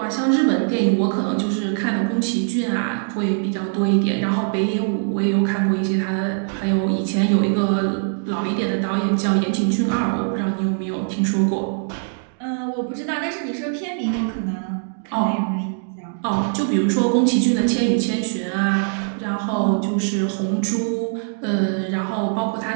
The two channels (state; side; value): silent; left; digital silence